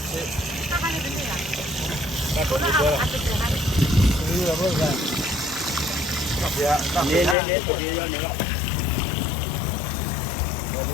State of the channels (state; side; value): drops out; right; at 7.4 s